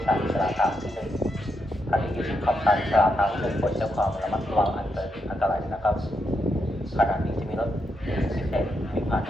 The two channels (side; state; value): both; normal; correlation 0.82